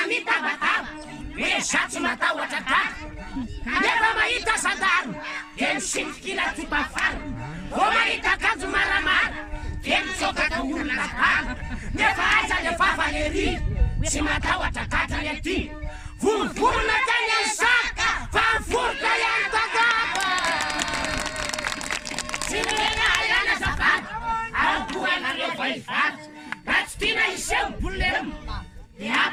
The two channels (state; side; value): identical; both; correlation 1.00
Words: minha batata. Deixa-te matar o atacado. Leva-me aí, tá sadado. Quem se que lá te bafar. vo mahita akanjo maramara temisoka ka olona bala nefa aza le favaleri tsy matahotra katrany aty volovolona tany any saka fa mivoroka ihany takapa tsy milena ihany azafady aokoanareo vahivady raha tsy tiana iseho bolemo de